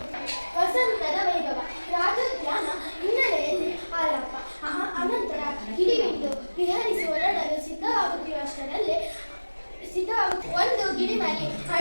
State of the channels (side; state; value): both; inverted; correlation -1.00